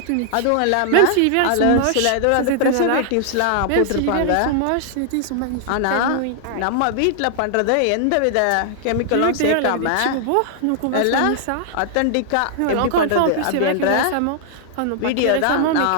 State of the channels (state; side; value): different; both; correlation -0.01